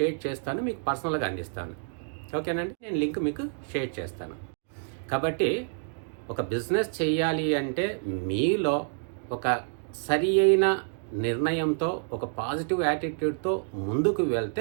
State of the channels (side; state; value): left; silent; digital silence